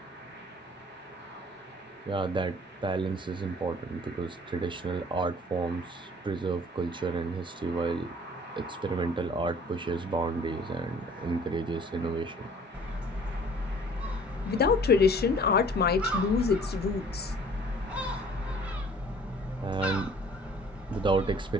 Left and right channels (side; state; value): both; normal; correlation 0.52